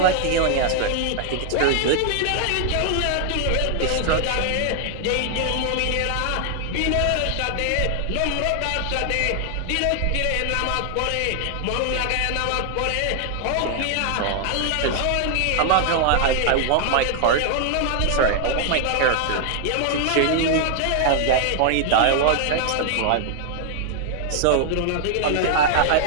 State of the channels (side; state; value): both; different; correlation 0.00